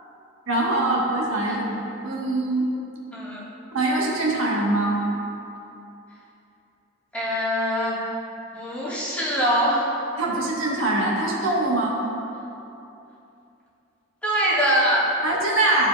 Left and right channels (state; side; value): normal; both; correlation 0.15